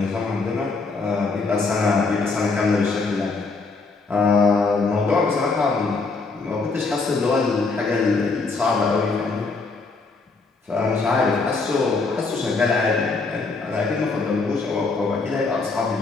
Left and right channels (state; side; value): quieter; right; 4.0 dB